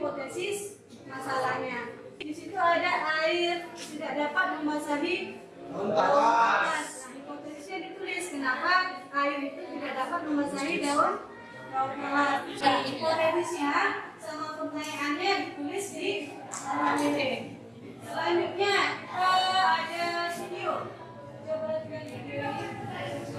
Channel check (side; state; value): both; identical; correlation 1.00